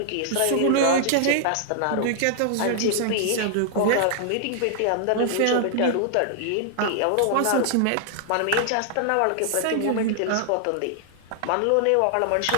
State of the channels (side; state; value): both; different; correlation -0.01